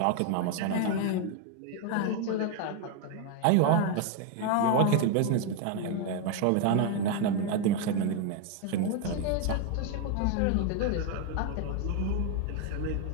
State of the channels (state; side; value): different; both; correlation 0.01